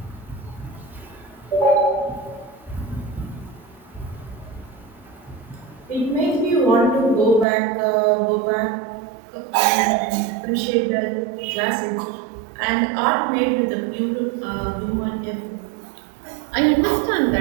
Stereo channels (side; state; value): left; drops out; at 7.5 s